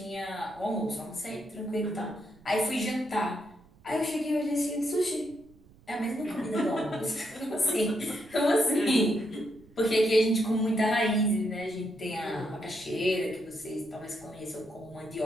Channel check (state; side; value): noise; right; rumble, 26 dB below the sound